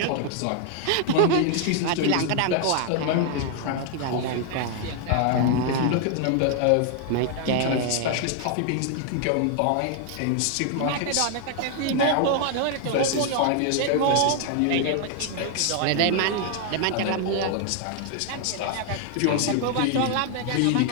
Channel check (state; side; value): different; both; correlation 0.00